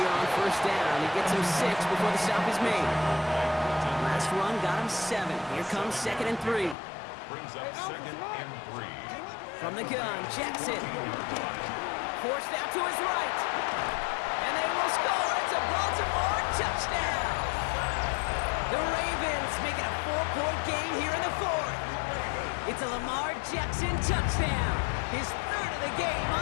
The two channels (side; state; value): right; drops out; at 6.8 s